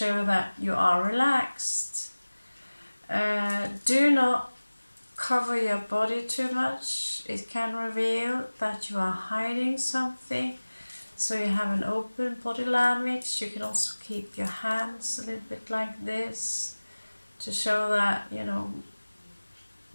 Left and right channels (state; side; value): inverted; both; correlation -1.00